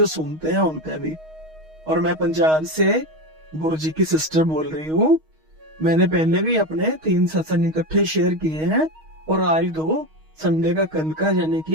सुनते हैं उनका भी। और मैं पंजाब से गुरु जी की सिस्टर बोल रही हूँ। मैंने पहले भी अपने 3 सत्संग इकट्ठे शेयर किए हैं, और आज 2 संडे का कल का यानी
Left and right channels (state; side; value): late; left; 6.4 ms